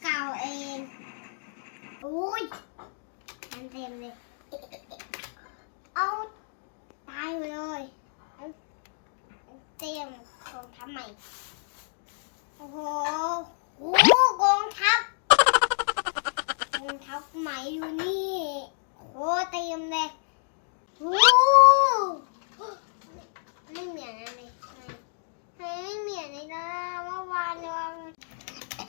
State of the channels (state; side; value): silent; right; digital silence